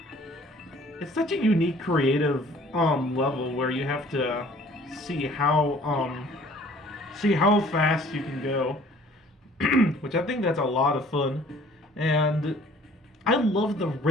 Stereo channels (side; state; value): both; normal; correlation 0.54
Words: It's such a unique, creative level where you have to see how fast you can go, which I think that's a lot of fun. And I love the